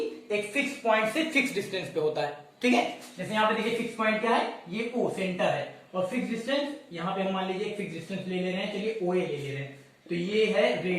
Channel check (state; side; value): identical; both; correlation 1.00